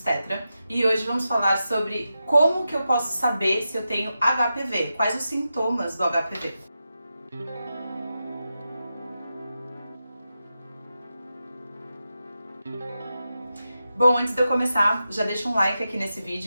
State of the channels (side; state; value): both; inverted; correlation -0.90